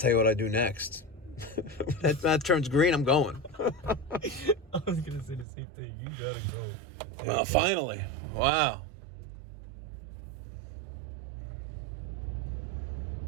you what I do next. that turns green, I'm going. I was gonna say the same thing. You gotta go. Well, finally. Wow.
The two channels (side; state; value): left; drops out; at 5.5 s